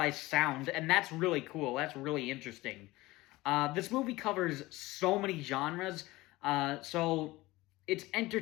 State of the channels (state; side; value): quieter; right; 19.6 dB